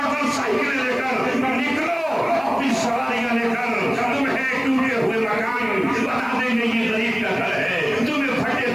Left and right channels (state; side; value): noise; left; hiss, 28 dB below the sound